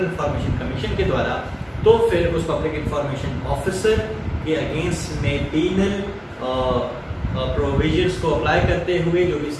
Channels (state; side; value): identical; both; correlation 1.00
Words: इंफॉर्मेशन कमीशन के द्वारा, तो फिर उस पब्लिक इंफॉर्मेशन ऑफिसर के अगेंस्ट में पीनल प्रोविजंस को अप्लाई करते हुए जो भी